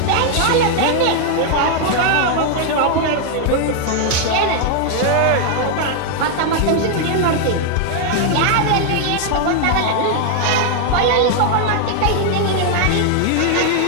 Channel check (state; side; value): different; both; correlation 0.00